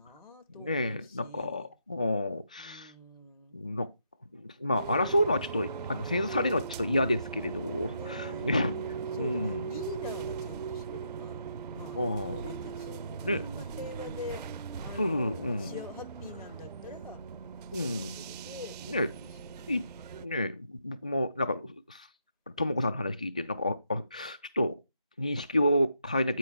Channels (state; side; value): inverted; both; correlation -0.77